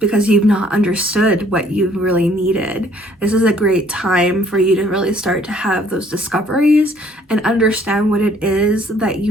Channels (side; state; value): both; normal; correlation 0.61